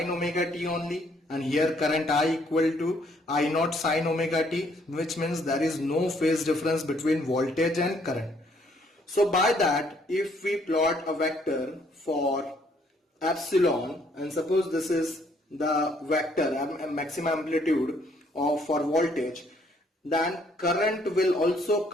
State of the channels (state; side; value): normal; both; correlation 0.66